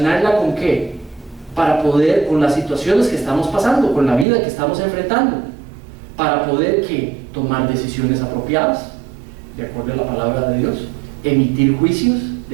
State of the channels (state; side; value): drops out; left; at 4.2 s